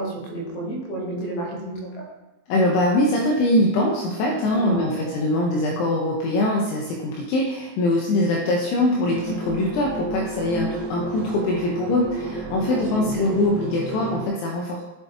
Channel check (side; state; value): right; late; 23 ms